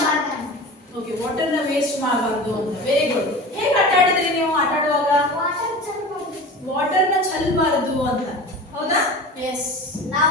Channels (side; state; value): both; normal; correlation 0.34